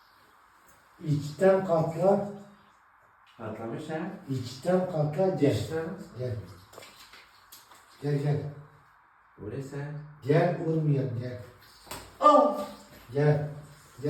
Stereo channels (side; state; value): both; identical; correlation 1.00